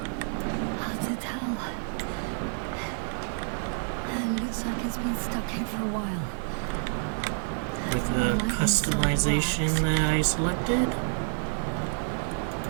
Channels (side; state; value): left; silent; digital silence